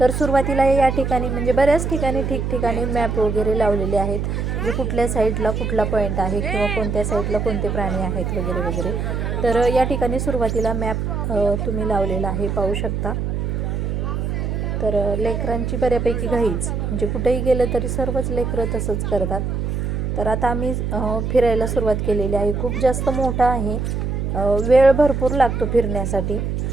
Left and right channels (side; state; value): right; noise; hum, 1 dB below the sound